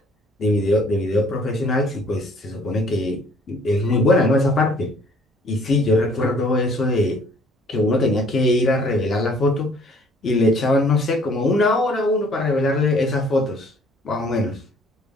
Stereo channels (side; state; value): both; normal; correlation 0.58